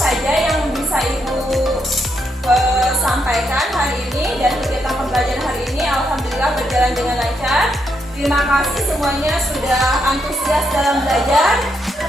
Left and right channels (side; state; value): both; normal; correlation 0.79